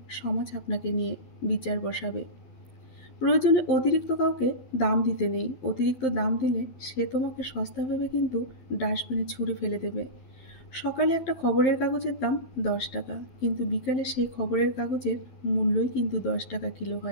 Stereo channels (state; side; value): late; right; 12 ms